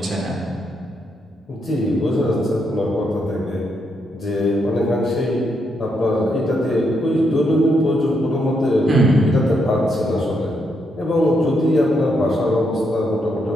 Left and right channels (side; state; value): both; normal; correlation 0.79